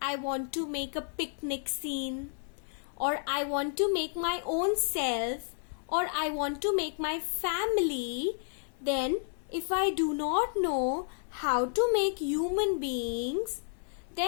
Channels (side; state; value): right; silent; digital silence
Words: I want to make a picnic scene, or I want to make my own self, or I want to make my family, then if I do not know how to make human beings,